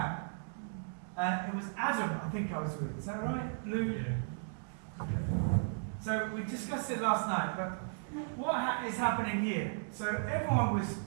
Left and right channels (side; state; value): left; silent; digital silence